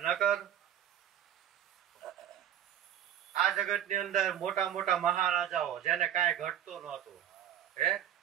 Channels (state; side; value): quieter; left; 10.7 dB